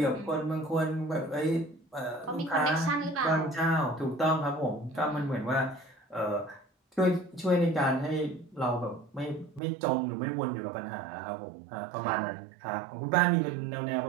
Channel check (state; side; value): drops out; left; at 9.6 s